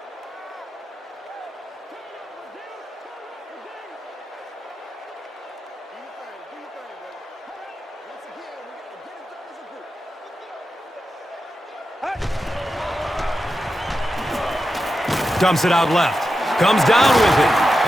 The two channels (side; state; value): both; normal; correlation 0.90